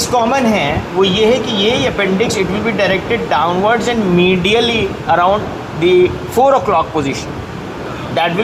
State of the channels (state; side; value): identical; both; correlation 1.00